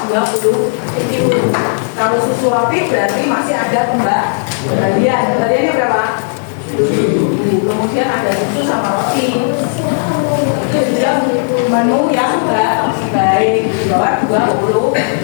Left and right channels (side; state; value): right; silent; 68 dB below the other